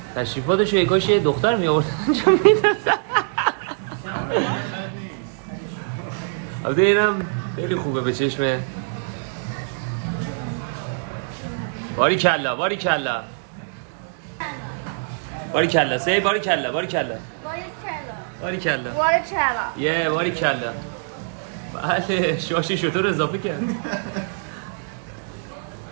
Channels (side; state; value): left; silent; digital silence